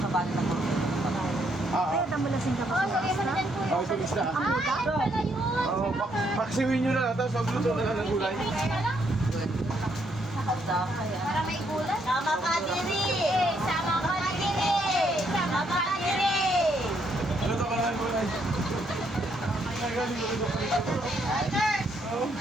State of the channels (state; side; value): normal; both; correlation 0.73